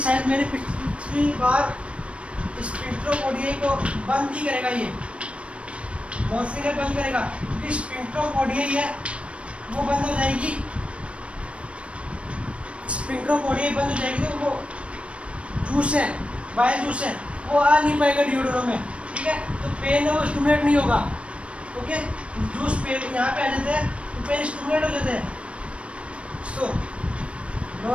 शायद मैंने पिछली बार स्पेक्ट्रोपोडिया को बंद ही करेगा, ये मॉर्फिन है बंद करेगा, क्योंकि स्पेक्ट्रोपोडिया ही है वो बंद हो जाएगी, स्पेक्ट्रोपोडिया बंद हो जाएगी तो वो जूस है बाइल जूस है वो आ नहीं पाएगा डिओड्रो में। ठीक है, तो पेन है वो स्टिमुलेट नहीं होगा। ओके, जूस पेन यहाँ पे आ जाते हैं तो पेन स्टिमुलेट हो जाते हैं। सो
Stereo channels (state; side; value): late; left; 0.061 ms